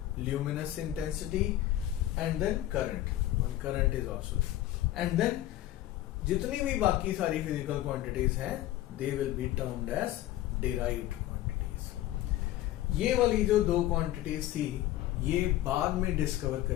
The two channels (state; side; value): quieter; right; 14.3 dB